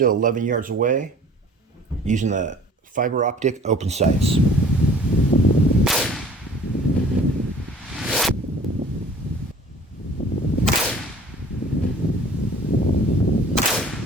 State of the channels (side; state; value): both; normal; correlation 0.49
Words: 11 yards away using the fiber optic open sights.